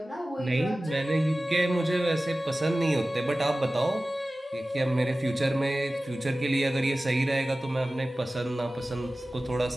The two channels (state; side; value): normal; both; correlation 0.96